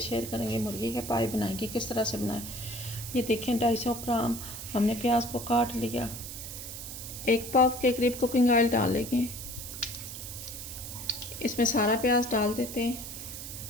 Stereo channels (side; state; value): right; noise; hiss, 9 dB below the sound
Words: करेंगे मुर्गी के पाए बनाएंगे किस तरह से बनाएं। ये देखें 250 ग्राम हमने प्याज को काट लिया। 1 पाव के करीब कुकिंग ऑयल डालेंगे। इसमें सारा प्याज डाल देते हैं।